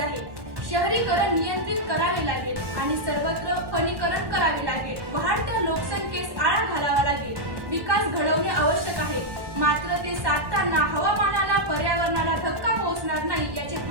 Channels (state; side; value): late; left; 1.1 ms